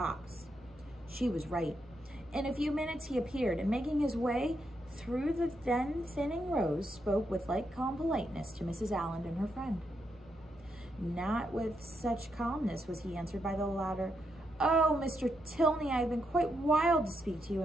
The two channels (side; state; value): both; normal; correlation 0.81